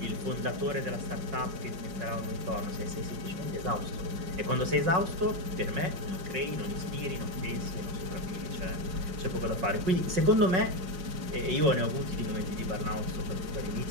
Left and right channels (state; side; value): late; left; 5.5 ms